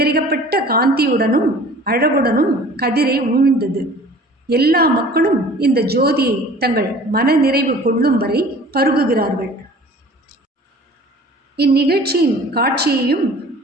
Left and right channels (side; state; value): both; normal; correlation 0.47